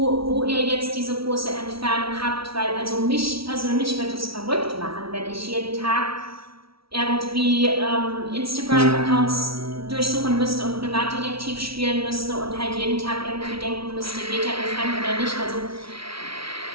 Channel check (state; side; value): late; left; 0.75 ms